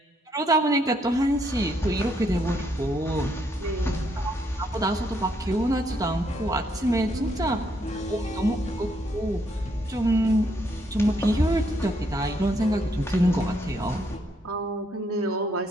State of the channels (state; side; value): normal; both; correlation 0.73